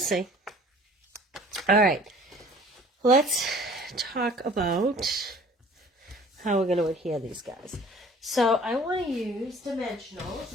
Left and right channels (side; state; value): both; normal; correlation 0.50